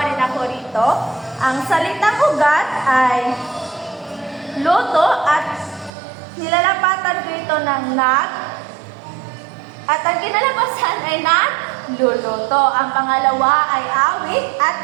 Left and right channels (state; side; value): drops out; left; at 5.9 s